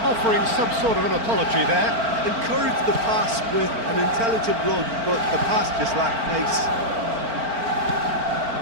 offering some sort of an apology there. Encouraged the pass with an intelligent run, but the pass just lacked pace.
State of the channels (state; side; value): late; left; 4.4 ms